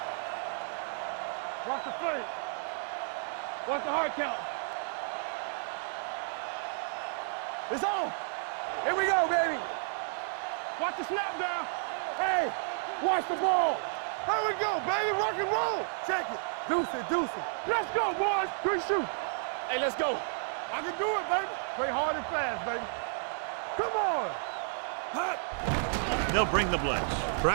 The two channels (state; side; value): silent; left; digital silence